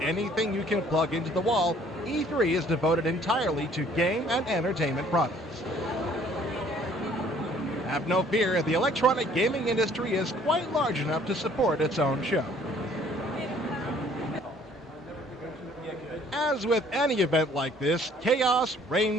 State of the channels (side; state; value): both; normal; correlation 0.58